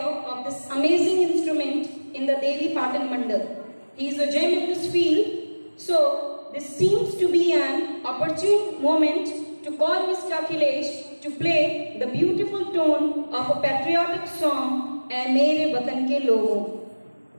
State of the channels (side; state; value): both; inverted; correlation -1.00